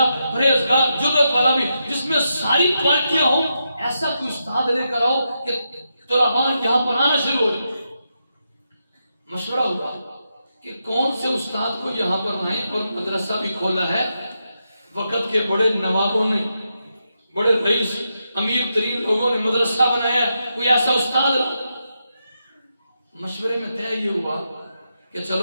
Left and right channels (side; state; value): both; inverted; correlation -0.85